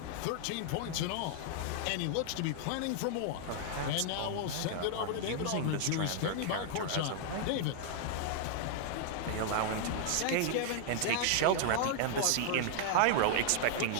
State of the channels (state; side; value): different; both; correlation 0.00